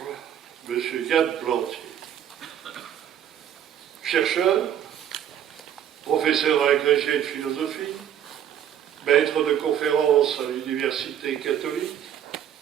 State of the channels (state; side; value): quieter; left; 9.9 dB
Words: M. Yann Plantier. Chercheur, professeur agrégé de philosophie, maître de conférences à l'université catholique,